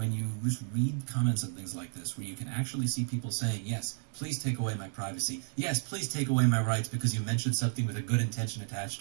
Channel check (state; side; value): silent; left; digital silence